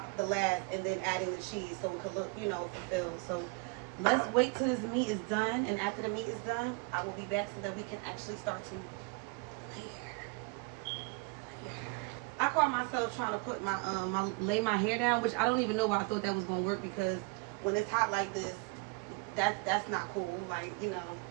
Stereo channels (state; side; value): quieter; left; 28.4 dB